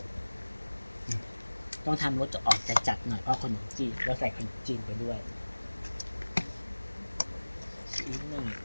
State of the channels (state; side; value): inverted; both; correlation -1.00